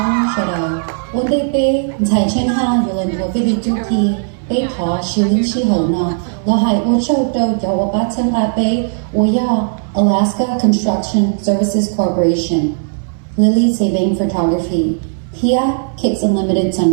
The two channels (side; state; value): left; silent; 65 dB below the other